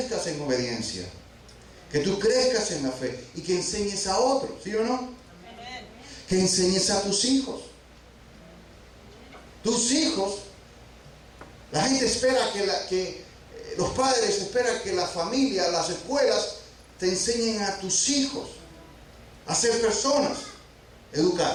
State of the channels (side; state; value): both; identical; correlation 1.00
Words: en obediencia, que tú crezcas en la fe y que enseñes a otros, ¿sí o no? Que enseñes a tus hijos. Tus hijos, la gente espera que los padres esperan que la familia, las escuelas te enseñen a tus hijos a ser personas